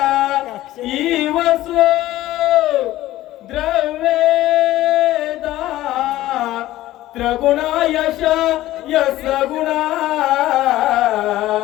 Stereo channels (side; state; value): right; quieter; 15.4 dB